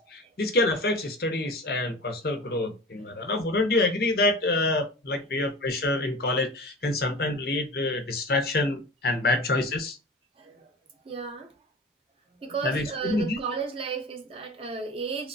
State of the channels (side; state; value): both; normal; correlation 0.35